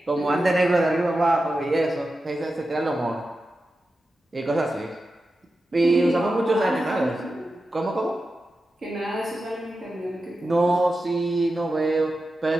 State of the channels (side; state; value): both; normal; correlation 0.91